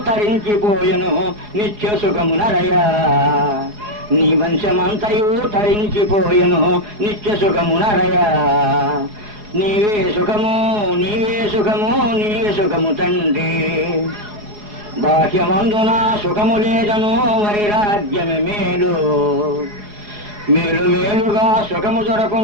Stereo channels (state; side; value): late; left; 4.8 ms